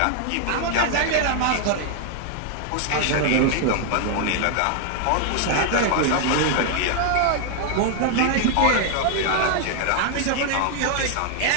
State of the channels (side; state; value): both; different; correlation 0.00